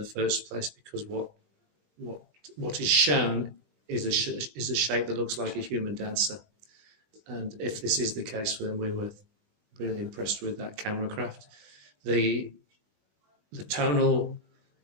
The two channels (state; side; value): late; left; 20 ms